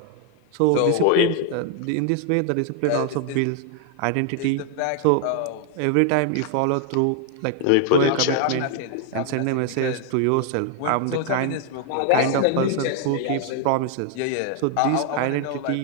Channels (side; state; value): both; different; correlation 0.00